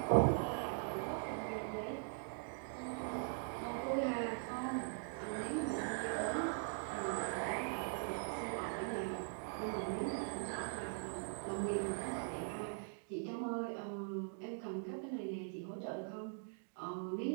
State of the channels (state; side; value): silent; left; digital silence